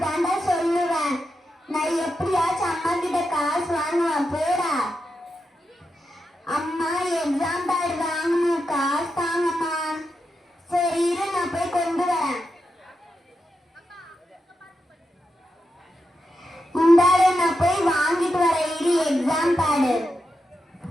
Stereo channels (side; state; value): both; normal; correlation 0.87